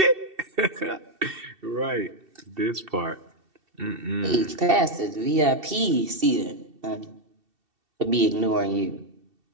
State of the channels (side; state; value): left; late; 2.7 ms